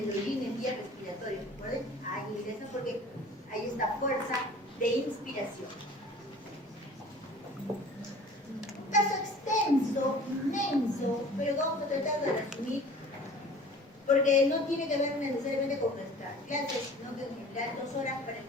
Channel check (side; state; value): both; normal; correlation 0.46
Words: orín en vía respiratoria. ¿Recuerden? Ahí ingresa porque hay esta fuerza de inspiración. Caso extenso, inmenso, pero vamos a tratar de resumir, porque no tiene que ver necesariamente con nuestras clases, sino que en general 2 horas para el